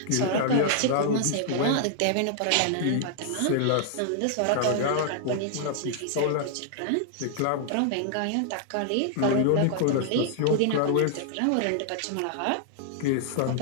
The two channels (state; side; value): different; both; correlation -0.01